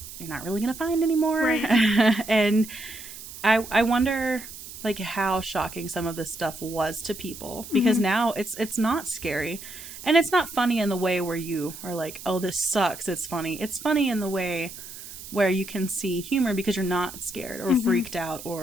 you're not really going to find anymore. Right. And I wonder, how shocking some of this stuff was to people. Because now it's not scary. And it's not funny in the way where you are like, oh, this sucks. It's funny. It's funny in the way where you can see humor because you're not scared or freaked out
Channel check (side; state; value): right; noise; hiss, 13 dB below the sound